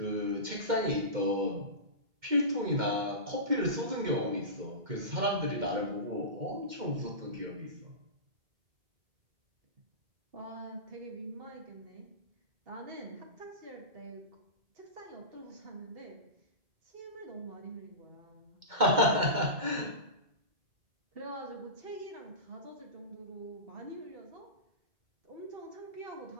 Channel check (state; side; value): late; left; 2.1 ms